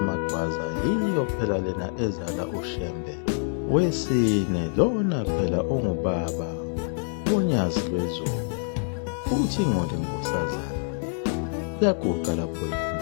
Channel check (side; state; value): right; silent; digital silence